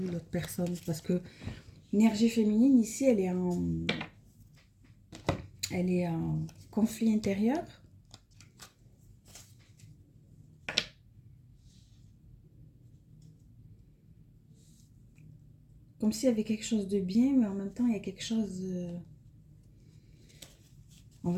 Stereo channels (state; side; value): identical; both; correlation 1.00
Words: l'autre personne, parce que l'énergie féminine ici, elle est en conflit intérieur. Comme s'il y avait quelque chose de bien, mais en même temps, il y a quelque chose... On